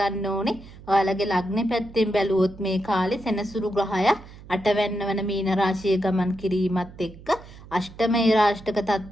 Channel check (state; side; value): noise; right; hum, 18 dB below the sound